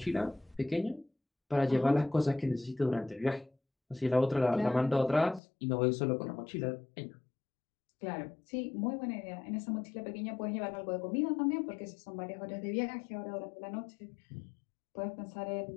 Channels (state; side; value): drops out; right; at 5.4 s